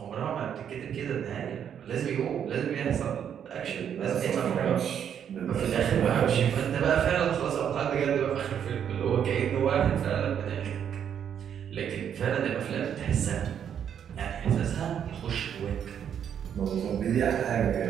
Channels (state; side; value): quieter; left; 8.7 dB